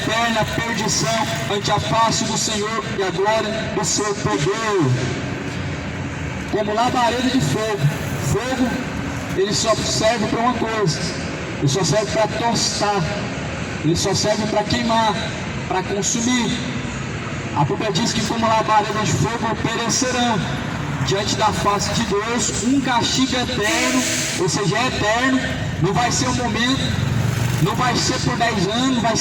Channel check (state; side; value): identical; both; correlation 1.00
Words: perdição ante a face do Senhor e a glória do seu poder. Como labareda de fogo. Fogo, ele só serve para uma coisa, ele só serve para tostar, ele só serve para queimar, para consumir. A Bíblia diz que como labareda de fogo perecerão diante da face de Deus, um castigo eterno, ou seja, é eterno, não vai ser um momento, não vai ser por 10 anos, não vai